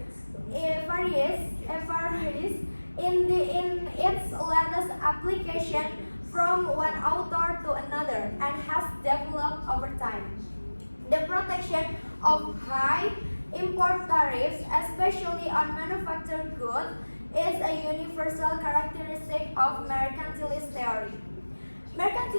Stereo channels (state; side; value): inverted; both; correlation -1.00